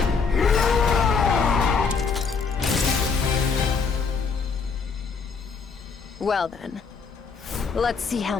Well then, let's see how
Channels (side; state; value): right; quieter; 5.3 dB